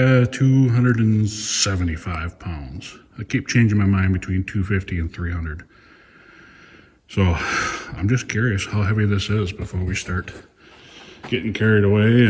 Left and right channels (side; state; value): both; identical; correlation 1.00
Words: pounds. I keep changing my mind between 250 and 300. So I'm just curious how heavy this is before we start getting carried away.